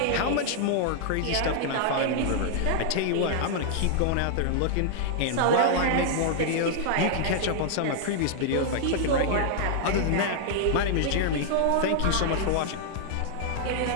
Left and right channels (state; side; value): different; both; correlation -0.01